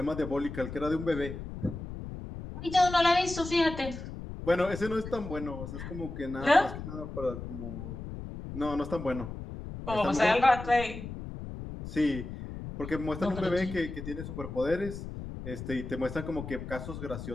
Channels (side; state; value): left; noise; rumble, 9 dB below the sound